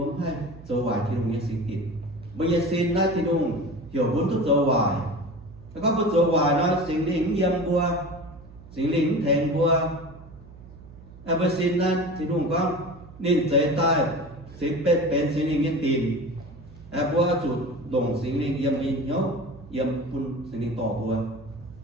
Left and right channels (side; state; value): right; noise; hum, 19 dB below the sound